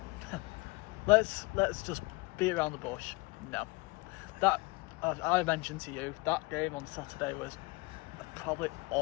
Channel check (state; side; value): quieter; right; 25.4 dB